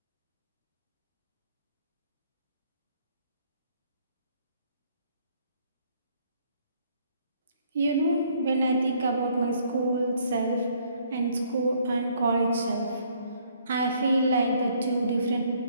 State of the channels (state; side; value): inverted; both; correlation -0.64